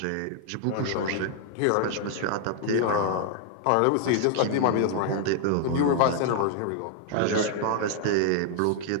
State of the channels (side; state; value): both; different; correlation 0.00